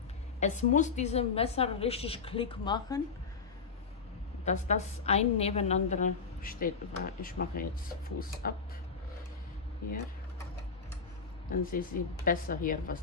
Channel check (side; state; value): right; quieter; 5.3 dB